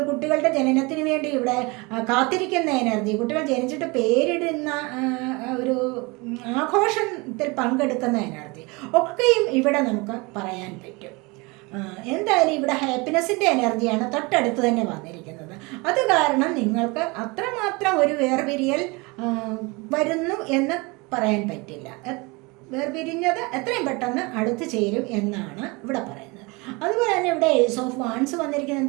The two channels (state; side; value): quieter; left; 26.5 dB